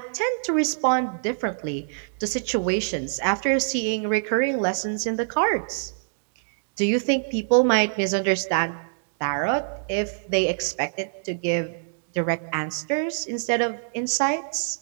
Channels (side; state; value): left; silent; digital silence